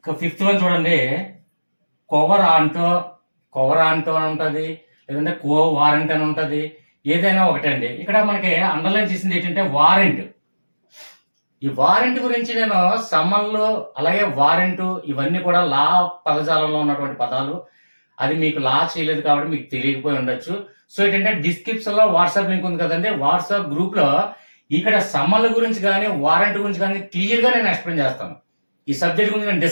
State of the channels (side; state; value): both; inverted; correlation -1.00